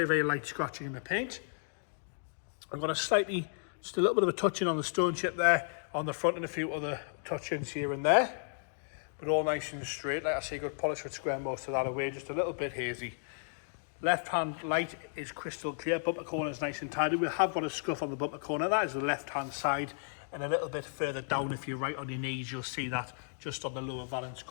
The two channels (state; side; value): silent; right; digital silence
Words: very light scratching in the paint. I've got just a little bit of a touch-in on the stone chip there on the front and a few other touch-ins here and there. But all nice and straight. Like I say, good polish would square most of that away, just a little bit hazy. Left-hand light is crystal clear. Bumper corner is nice and tidy. We have got a scuff on the bumper corner. That is the left-hand side. And a little bit further down, if you're right on your knees, you'll see that just on the lower valance